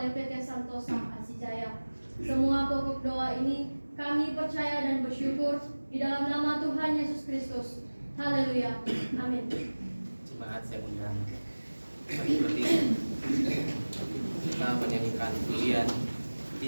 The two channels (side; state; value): both; inverted; correlation -1.00